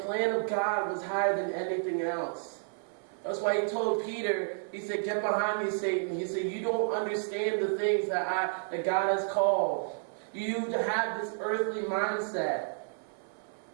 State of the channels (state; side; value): silent; left; 55 dB below the other